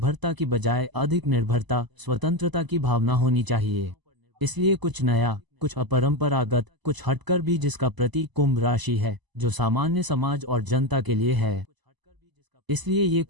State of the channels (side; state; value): left; late; 1.0 ms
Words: की बजाय अधिक निर्भरता, स्वतंत्रता की भावना होनी चाहिए। इसलिए कुछ नया, कुछ अपरंपरागत, कुछ हटकर भी जिसका प्रतीक कुंभ राशि है, जो सामान्य समाज और जनता के लिए है। इसलिए ये